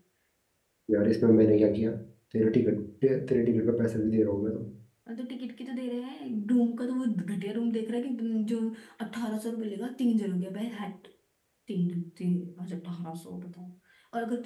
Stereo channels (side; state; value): both; identical; correlation 1.00